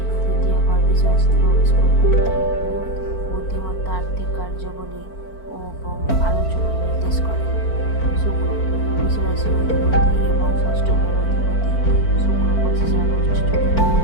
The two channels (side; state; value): right; late; 4.4 ms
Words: তৃতীয় ঘর বৃষ রাশিতে প্রবেশ করবে। বুদ্ধিমত্তা, আর্থিক কার্যাবলী এবং আলোচনা নির্দেশ করে। শুক্র বৃষ রাশির অধিপতি এবং ষষ্ঠ ঘরের অধিপতি শুক্র 25 আগস্ট চতুর্থ